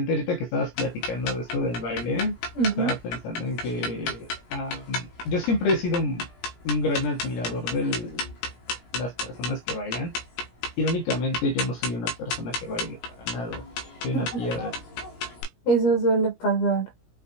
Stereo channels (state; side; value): late; right; 17 ms